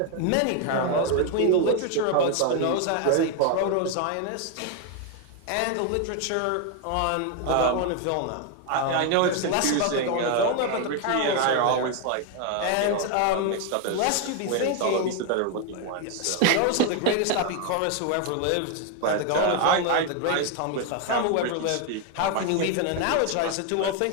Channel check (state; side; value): different; both; correlation 0.01